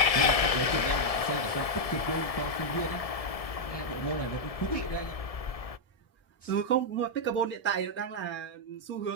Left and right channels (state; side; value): late; right; 1.7 ms